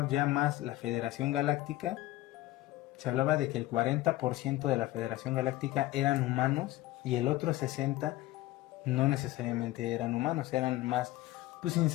ya más la Federación Galáctica, se hablaba de que el 40% de la Federación Galáctica eran humanos y el otro 60% no necesariamente eran humanos, eran más pues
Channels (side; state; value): right; quieter; 16.5 dB